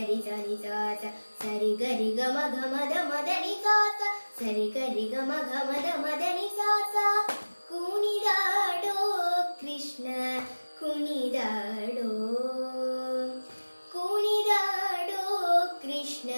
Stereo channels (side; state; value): both; inverted; correlation -1.00